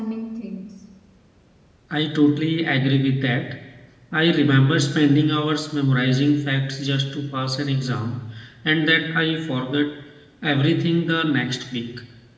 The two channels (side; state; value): both; identical; correlation 1.00